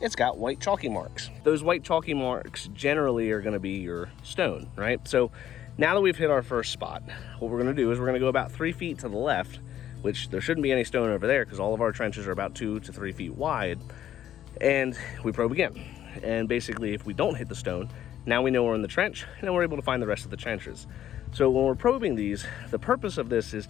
got white chalky marks. Those white chalky marks generally are gonna be your stone, right? So now that we've hit our first spot, what we're gonna do is we're gonna go about 3 feet to the left, which there shouldn't be any stone over there because all of our trenches are about 2 to 3 feet wide, and we probe again. And basically, if we don't hit the stone, now we know we're in the trench, and then we're able to find the rest of the trenches. So when we're probing these, the purpose of this is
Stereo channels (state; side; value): quieter; right; 11.2 dB